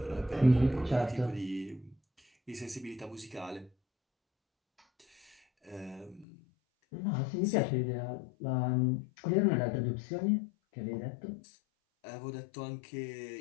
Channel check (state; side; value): drops out; right; at 6.2 s